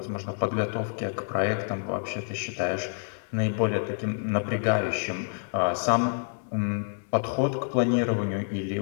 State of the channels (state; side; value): silent; right; digital silence